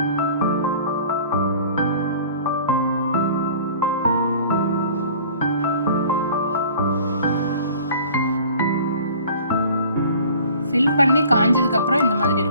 ஃபில் பண்ணி காஞ்சதுக்கப்புறம் இந்த மாதிரி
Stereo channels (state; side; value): inverted; both; correlation -0.47